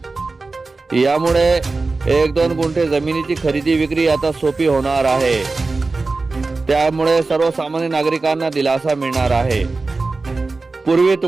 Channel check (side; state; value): left; quieter; 3.7 dB